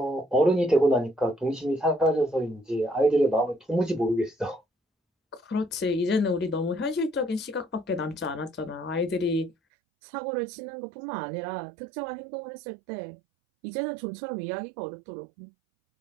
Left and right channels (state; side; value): drops out; left; at 9.6 s